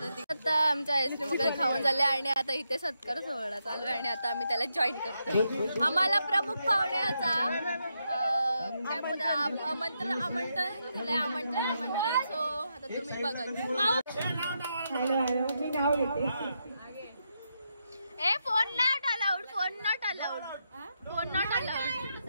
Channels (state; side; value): inverted; both; correlation -0.83